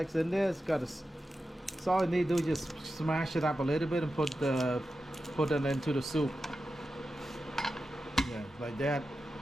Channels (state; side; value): normal; both; correlation 0.91